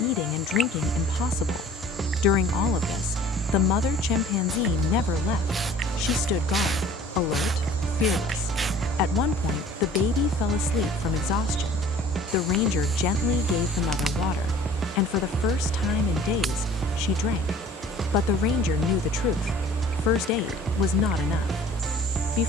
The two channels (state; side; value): normal; both; correlation 0.50